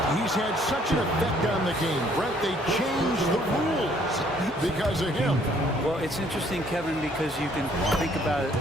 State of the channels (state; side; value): normal; both; correlation 0.63